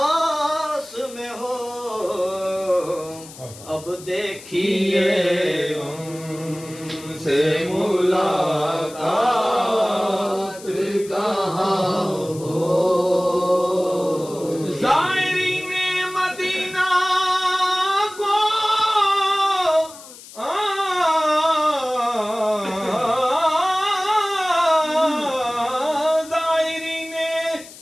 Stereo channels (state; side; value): noise; left; hiss, 18 dB below the sound